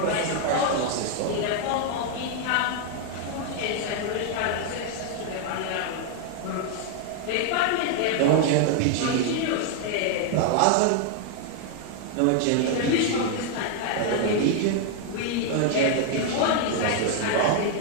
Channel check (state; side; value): different; both; correlation 0.00